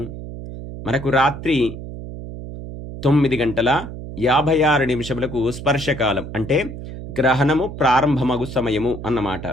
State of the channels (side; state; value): right; noise; hum, 10 dB below the sound